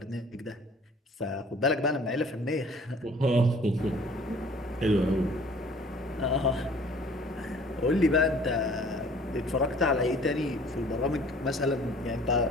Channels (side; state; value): both; normal; correlation 0.51